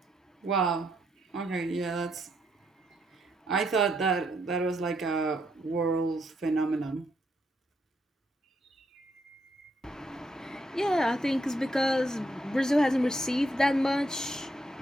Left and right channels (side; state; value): both; normal; correlation 0.76